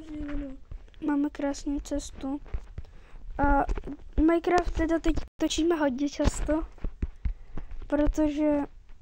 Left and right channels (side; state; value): both; identical; correlation 1.00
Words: změněno. Máme krásnou cestu. A Minecraft teda teď točíme hodně často, protože